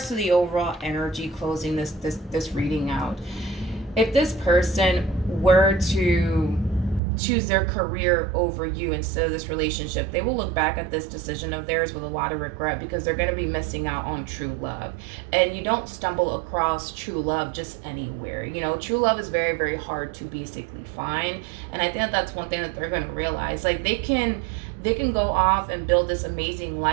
to the overall energy closing this reading out, if this person were to choose their career over you instead of this relationship, they will look back at this decision of theirs with a lot of regret, because they're going to be missing out on true love. And you don't stumble across true love just anywhere. True love is very, very hard to basically find. And I think that's one thing that they're going to realize. Like, they can they can go off and build this amazing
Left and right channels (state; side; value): drops out; left; at 7.0 s